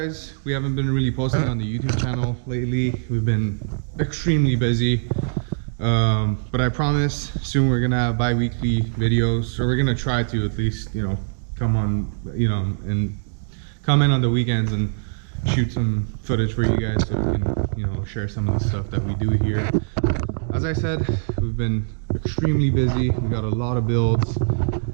we haven't been really posting on the YouTube channel lately. We've been extremely busy, but I promise soon we're gonna have bi-weekly videos, or we're gonna try to at least, come on, and come in on the weekends and shoot some footage for you guys so we can, share some of the stuff that we do here. As I said, we've been extremely busy. We got a lot of builds.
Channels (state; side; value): silent; left; digital silence